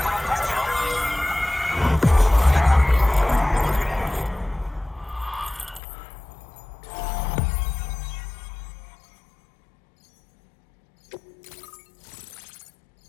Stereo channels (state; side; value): drops out; right; at 5.8 s